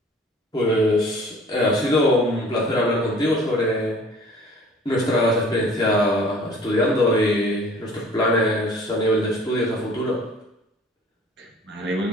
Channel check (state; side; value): normal; both; correlation 0.50